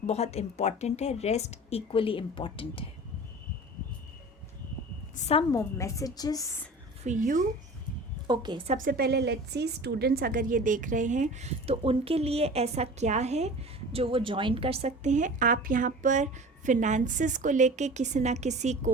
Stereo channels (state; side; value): normal; both; correlation 0.39